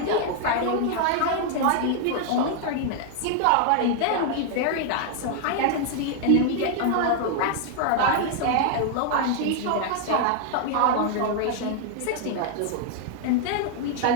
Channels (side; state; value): both; different; correlation 0.00